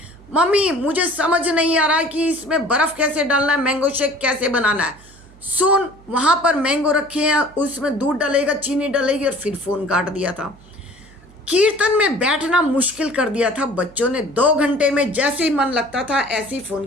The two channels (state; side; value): noise; right; hum, 24 dB below the sound